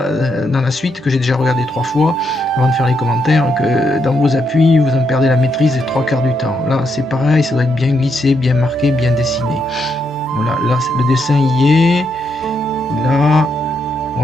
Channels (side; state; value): both; normal; correlation 0.79